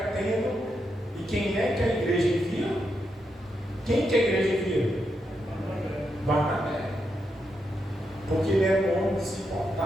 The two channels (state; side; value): normal; both; correlation 0.83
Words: E quem é que a igreja envia? Quem que a igreja envia? Barnabé. Porque ele era um homem que se